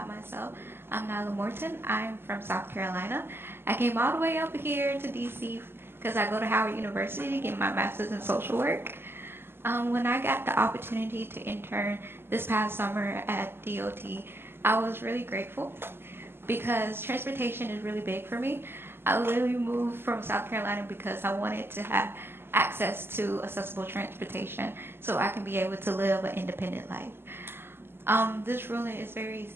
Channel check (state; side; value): late; left; 0.11 ms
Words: myself, I'm Nyla Morton. I'm from South Carolina. I came all the way up here to DC because I go to Howard University to get my master's in social work. When I got the opportunity to intern this past summer at DOT, I was really grateful because transportation is really big for me. I literally moved from South Carolina because I wanted to have access to accessible transportation so I can be able to live an independent life. This ruling is very